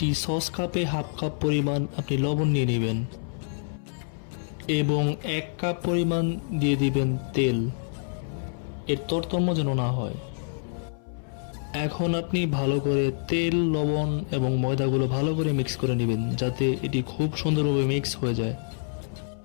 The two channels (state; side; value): silent; right; 56 dB below the other